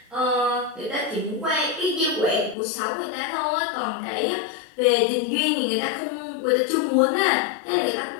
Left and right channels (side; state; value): right; drops out; at 2.6 s